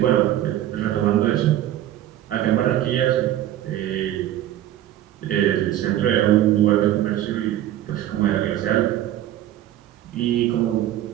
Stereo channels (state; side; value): quieter; left; 12.7 dB